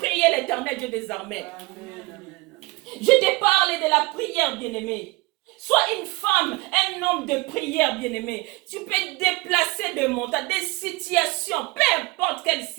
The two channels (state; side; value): quieter; left; 23.9 dB